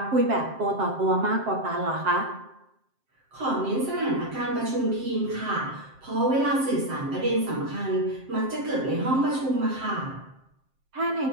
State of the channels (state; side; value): late; left; 7.6 ms